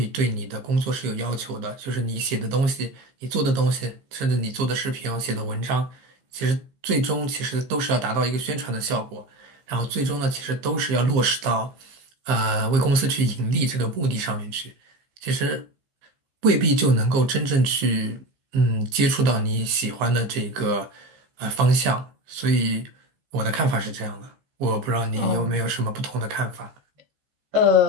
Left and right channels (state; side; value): late; left; 15 ms